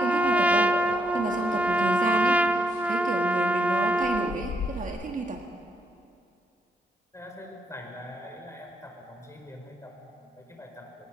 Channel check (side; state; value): both; normal; correlation 0.76